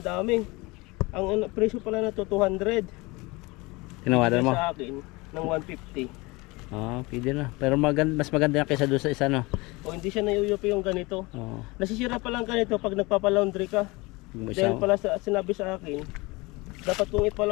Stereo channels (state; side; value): quieter; right; 24.1 dB